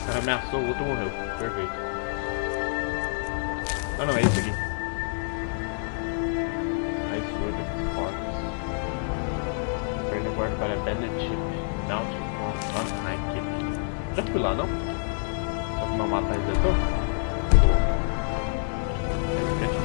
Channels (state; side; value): silent; right; digital silence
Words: cara ameaçou, o outro morreu. Perfeito. Ah não, é esse aqui. Ice Sword of Sparks. Turn the board para Bandit Chip. Down to on high keep. Já fui lá, não? Só que meu mapa resetou? Boa. Aí fica